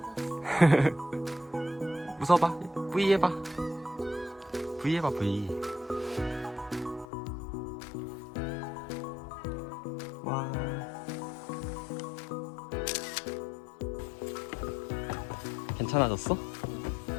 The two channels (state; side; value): drops out; right; at 7.1 s